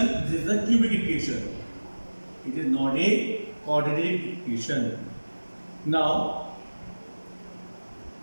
this is the cubic equation. It is not a quadratic equation. Now,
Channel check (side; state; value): both; inverted; correlation -1.00